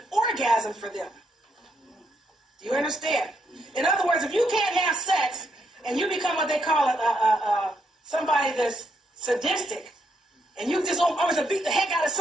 orgasm for them. Do you understand? In other words, if you can't have sex and you become what they call somebody that's sadistic, and you just always to beat the heck out of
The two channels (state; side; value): normal; both; correlation 0.77